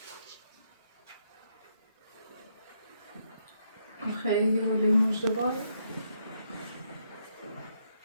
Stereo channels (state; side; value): inverted; both; correlation -0.76